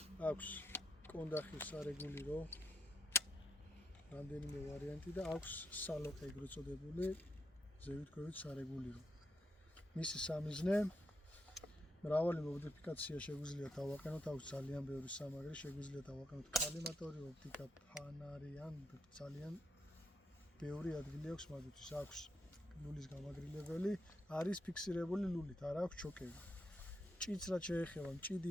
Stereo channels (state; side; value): normal; both; correlation 0.79